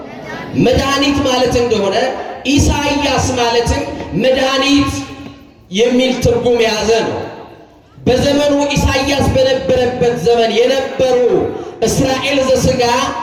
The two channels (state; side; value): identical; both; correlation 1.00